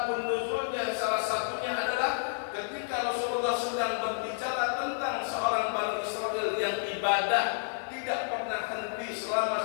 nuzulnya salah satunya adalah ketika Rasulullah sedang berbicara tentang seorang Bani Israel yang ibadah tidak pernah henti selama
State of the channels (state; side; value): silent; right; 58 dB below the other